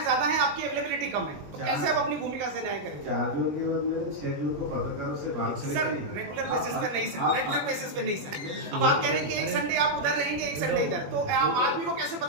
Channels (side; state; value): left; late; 21 ms